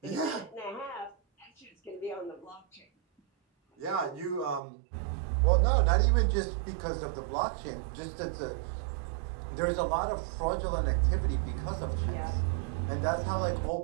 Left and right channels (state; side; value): drops out; left; at 4.6 s